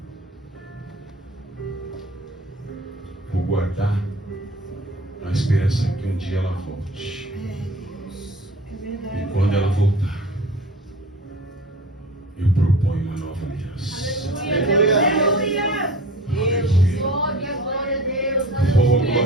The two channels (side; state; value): both; normal; correlation 0.41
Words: Vou guardar na esperança que um dia ela volte. E quando ela voltar, eu proponho uma nova aliança. Aleluia. Aleluia. Glória a Deus. Oh,